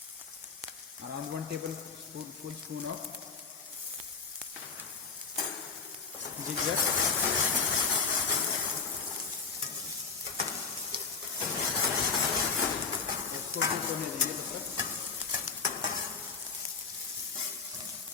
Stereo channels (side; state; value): right; quieter; 5.1 dB